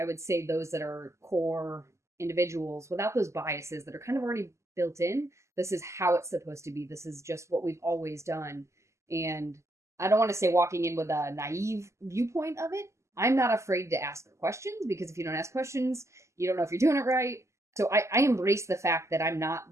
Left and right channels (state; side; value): late; left; 0.14 ms